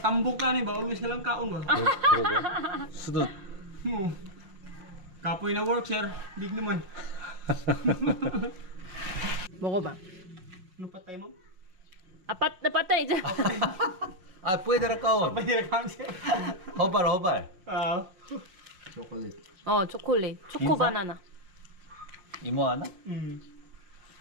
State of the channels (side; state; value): left; late; 5.5 ms